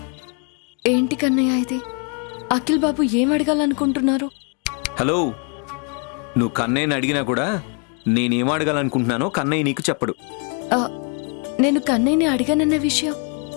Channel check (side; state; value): right; quieter; 37.4 dB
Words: ఏంటి కన్నయ్య ఇది? అఖిల్ బాబు ఏం అడగాలనుకుంటున్నారు? హలో, నువ్వు కన్నయ్యని అడిగినా కూడా నేనేం అడగాలనుకుంటున్నానో కన్నయ్య నీకు చెప్పడు. నేను కన్నయ్యని అడిగానన్న విషయం